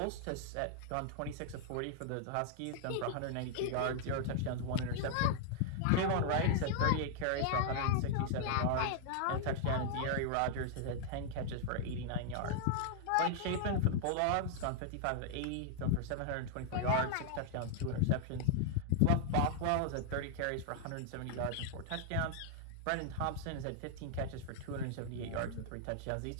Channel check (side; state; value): both; different; correlation 0.00